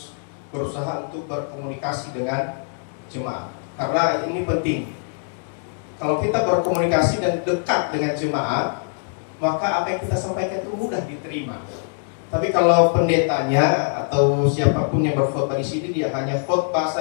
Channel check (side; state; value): right; silent; digital silence